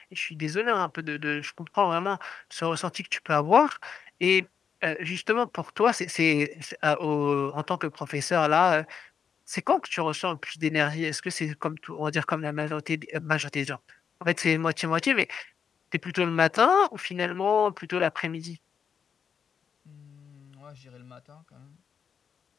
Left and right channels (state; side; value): quieter; right; 7.0 dB